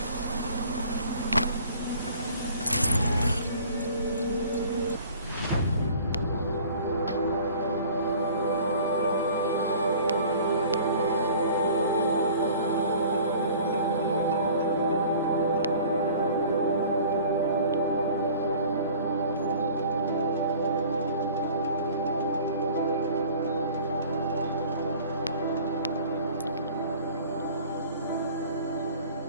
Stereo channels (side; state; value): both; inverted; correlation -0.47